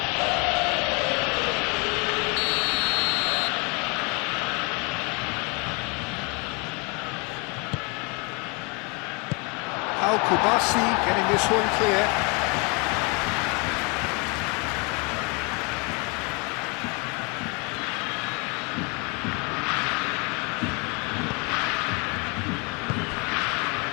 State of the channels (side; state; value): right; quieter; 31.2 dB